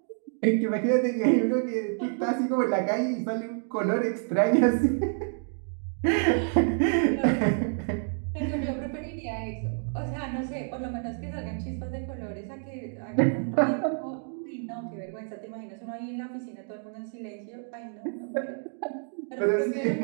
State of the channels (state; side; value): silent; left; 56 dB below the other